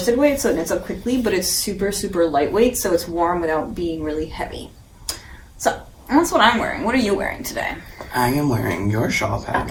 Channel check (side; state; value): both; identical; correlation 1.00